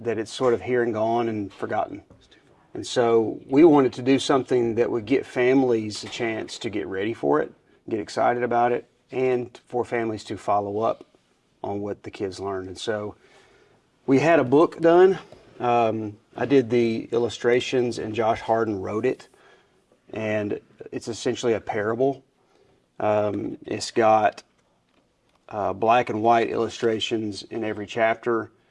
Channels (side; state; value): both; identical; correlation 1.00